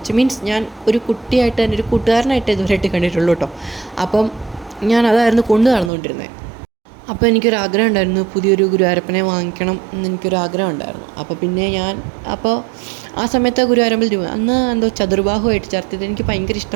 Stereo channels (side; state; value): left; drops out; at 5.9 s